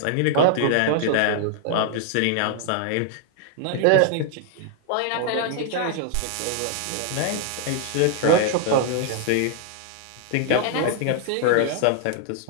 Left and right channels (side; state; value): both; different; correlation 0.00